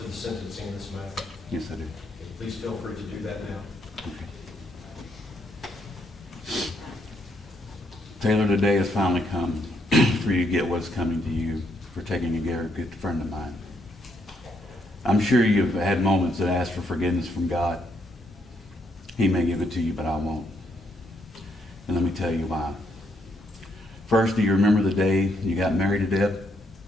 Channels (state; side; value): normal; both; correlation 0.74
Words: sentencing in this matter? Yes, I do. Okay, please feel free to do that now. Taylor, the day has finally come for you to get what's coming to you for taking a good friend of mine. I'm sure you've had moments that ask for forgiveness from God. He may give it to you, but I won't. And let me tell you why. First, do you remember the day you got married to Deb?